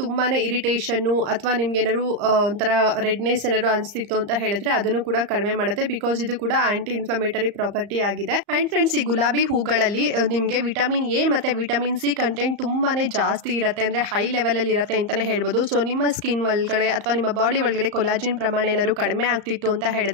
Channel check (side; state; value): left; late; 34 ms